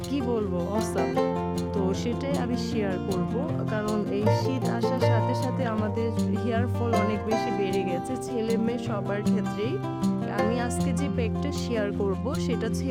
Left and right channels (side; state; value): both; identical; correlation 1.00